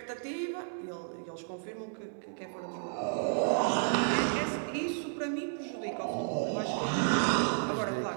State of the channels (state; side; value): silent; left; 56 dB below the other